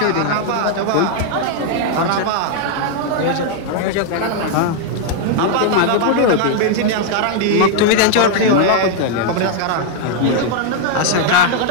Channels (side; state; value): both; different; correlation 0.00